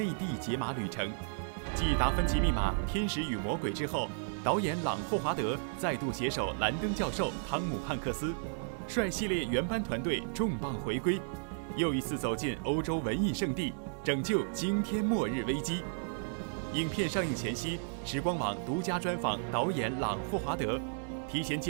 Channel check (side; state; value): left; silent; digital silence